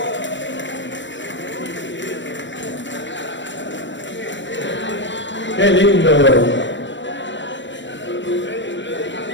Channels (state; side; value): late; right; 0.54 ms